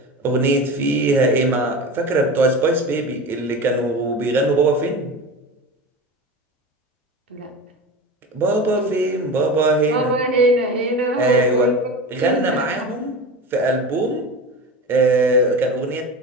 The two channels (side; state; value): both; normal; correlation 0.29